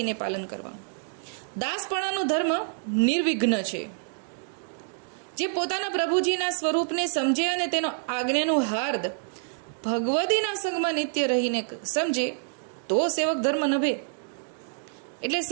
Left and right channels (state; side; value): silent; left; digital silence